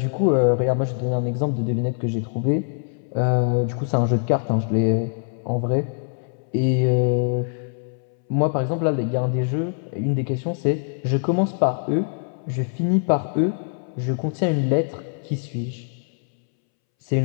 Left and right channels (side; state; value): right; silent; 63 dB below the other